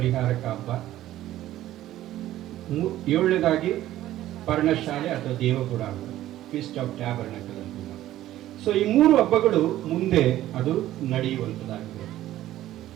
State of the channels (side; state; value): left; quieter; 14.0 dB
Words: ಹಬ್ಬ, 7ನೇದಾಗಿ ಪರ್ಣಶಾಲೆ ಅಥವಾ ದೇವಗುಡಾರ, ಫೀಸ್ಟ್ ಆಫ್ ಟ್ಯಾಬರ್ನಕಲ್ ಅಂತ. ಸೊ ಈ 3 ಹಬ್ಬಗಳು ಮುಂದೆ ಅದು ನಡೆಯುವಂಥದ್ದಾಗಿದೆ.